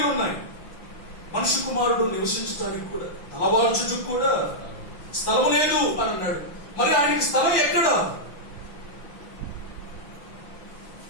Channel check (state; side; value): late; right; 6.0 ms